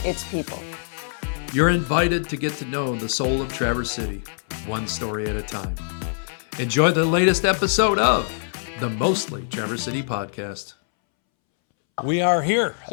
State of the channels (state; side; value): silent; right; 63 dB below the other